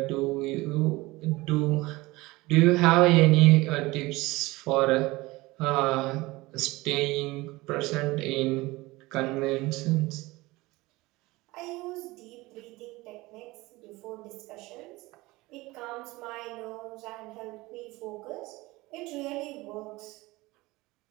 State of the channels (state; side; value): quieter; left; 20.9 dB